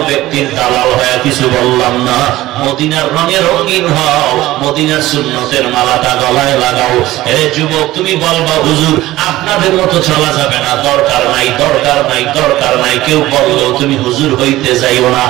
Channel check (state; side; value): quieter; left; 16.6 dB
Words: ব্যক্তির দালাল হয়ে কিছু বললাম না। মদিনার রঙে রঙিন হও, মদিনার সুন্নতের মালাটা গলায় লাগাও। এরে যুবক, তুমি বলবা হুজুর আপনাদের মতো চলা যাবে না, দরকার নাই, দরকার নাই, দরকার নাই। কেউ বললেও তুমি হুজুর হইতে যাইও না,